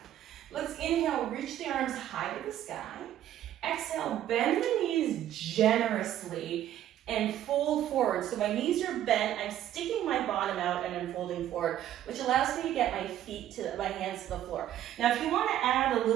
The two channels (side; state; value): left; quieter; 11.9 dB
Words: Let's inhale, reach the arms high to the sky. Exhale, bend the knees generously and fold forward. So my knees are bent, I'm sticking my bottom out and I'm folding forward, which allows me to get my hands to the floor. Now if you want to add a